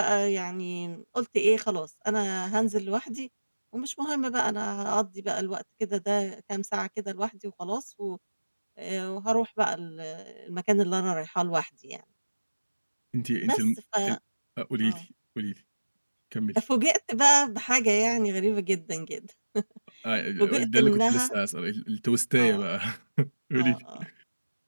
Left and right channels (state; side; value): inverted; both; correlation -1.00